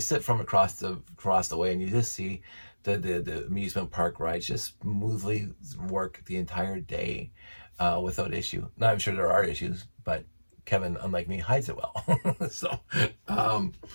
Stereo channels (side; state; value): both; inverted; correlation -1.00